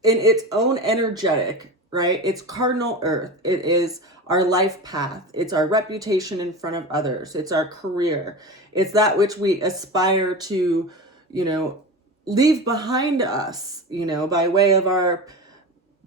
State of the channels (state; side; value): normal; both; correlation 0.27